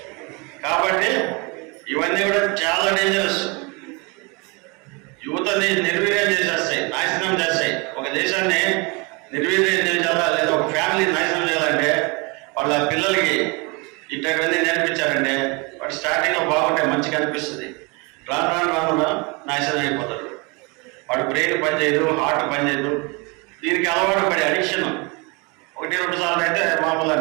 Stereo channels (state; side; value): quieter; left; 29.1 dB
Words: కాబట్టి ఇవన్నీ కూడా చాలా డేంజరస్. యువతని నిర్వీర్యం చేసేస్తాయి, నాశనం చేస్తాయి. ఒక దేశాన్ని నిర్వీర్యం చేయాలా లేదా ఒక ఫ్యామిలీని నాశనం చేయాలంటే వాళ్ళ పిల్లలకి ఇట్లాంటివన్నీ నేర్పించారంటే వాడు స్టార్టింగ్లో బాగుంటాయి, మంచిగా అనిపిస్తుంది. రాను నాశనం అయిపోతాడు. వాడు బ్రెయిన్ పనిచేయదు, హార్ట్ పనిచేయదు. దీనికి అలవాటు పడి అడిక్షన్ 1-2 సార్లు అయితే మామూలు